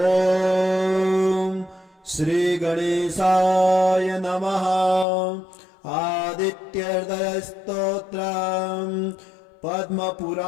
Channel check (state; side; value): drops out; right; at 5.1 s